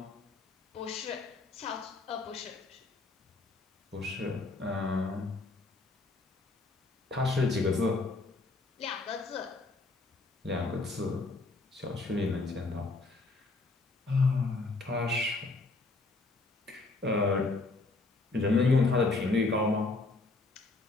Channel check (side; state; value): right; quieter; 3.4 dB